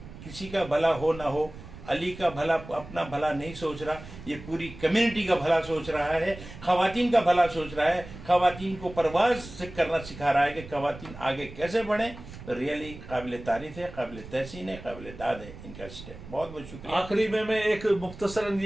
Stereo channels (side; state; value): right; noise; rumble, 15 dB below the sound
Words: کسی کا بھلا ہو نہ ہو, علی کا بھلا اپنا بھلا نہیں سوچ رہا, یہ پوری کمیونٹی کا بھلا سوچ رہا ہے, خواتین کا بھلا سوچ رہا ہے, خواتین کو پرواز سے کرنا سکھا رہا ہے کہ خواتین آگے کیسے بڑھیں. ریئلی قابل تعریف ہے, قابل تحسین ہے, قابل داد ہے ان کا اسٹیپ. بہت بہت شکریہ. آخری میں ایک مختصراً